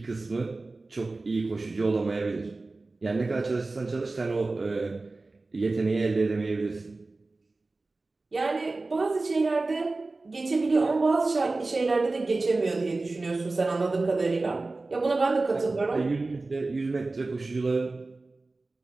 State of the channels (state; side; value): quieter; left; 3.4 dB